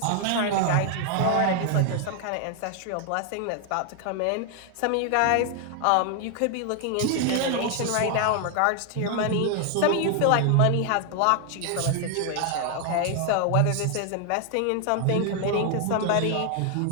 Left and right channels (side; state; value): both; different; correlation 0.00